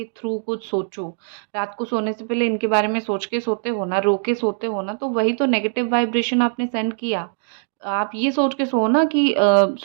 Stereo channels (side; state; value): left; silent; digital silence